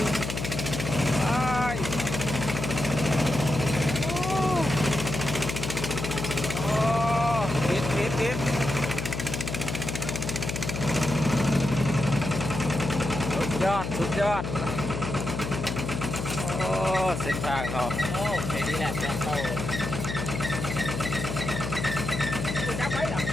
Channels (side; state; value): left; noise; hum, 4 dB below the sound